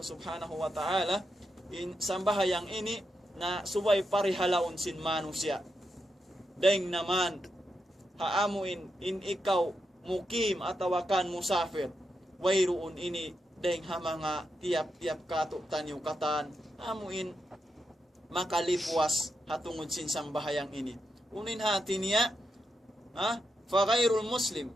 wa ta'ala in sambahayang ini na subay parihalaon sin manusia. Deng naman haamuin in ikaw mukim atawakan musafir wayruun ini deng ha mga tiap-tiap kato tanyo katan amuin makalipuas hatungod sin sambahayang ini. Unin hati niya fa ghairul muslim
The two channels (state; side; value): normal; both; correlation 0.85